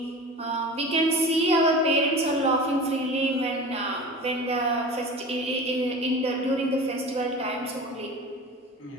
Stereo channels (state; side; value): normal; both; correlation 0.34